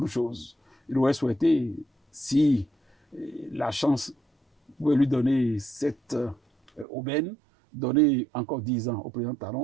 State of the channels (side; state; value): left; drops out; at 6.9 s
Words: choses. Il aurait souhaité, si la chance pouvait lui donner cette aubaine, donner encore 10 ans au président